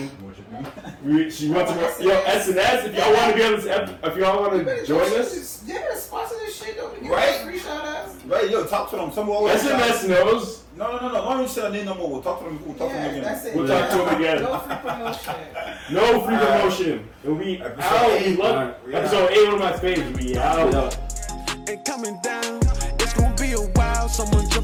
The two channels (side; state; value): both; identical; correlation 1.00